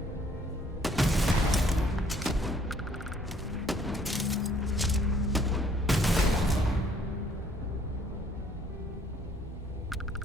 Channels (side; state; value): both; normal; correlation 0.61